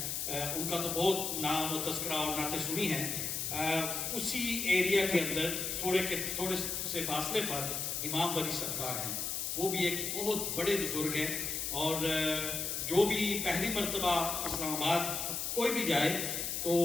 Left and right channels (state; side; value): noise; left; hiss, 2 dB below the sound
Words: ان کا تو بہت نام و تذکرہ اور نعتیں سنی ہیں، اسی ایریا کے اندر تھوڑے سے فاصلے پر امام بری سرکار ہیں، وہ بھی ایک بہت بڑے بزرگ ہیں، اور جو بھی پہلی مرتبہ اسلام آباد کوئی بھی جائے تو